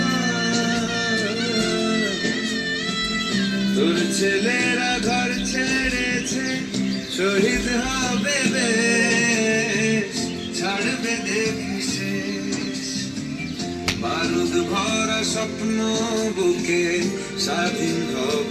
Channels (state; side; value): identical; both; correlation 1.00